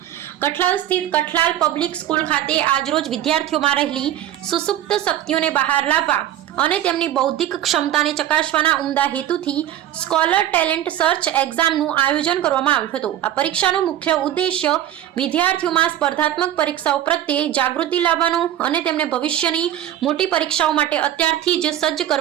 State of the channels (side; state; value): left; quieter; 11.9 dB